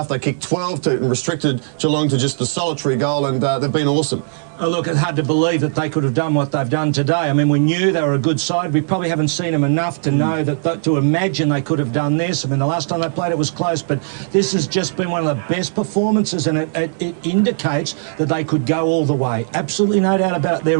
They kicked 12 and restricted Geelong to just the solitary goal, and they've been awesome. Oh, look, it's hard to believe that they could have done what they've done today. I mean, we knew they were a good side. We probably haven't seen them enough to know that to imagine they could have done this. I mean, the last time they played it was close, but this has just been one of the best performances, and it indicates that they could go all the way. Absolutely no doubt about it. They're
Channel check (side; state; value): left; silent; digital silence